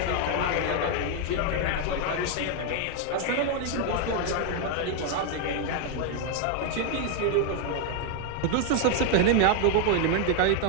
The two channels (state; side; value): different; both; correlation 0.01